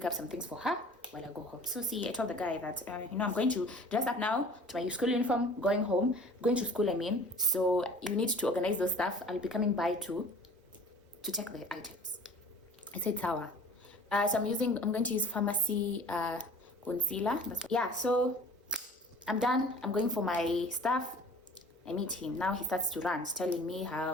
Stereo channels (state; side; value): normal; both; correlation 0.46